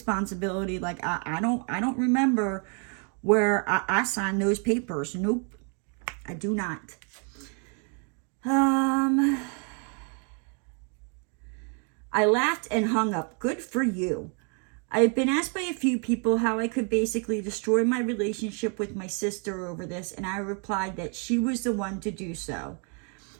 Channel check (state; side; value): quieter; left; 39.0 dB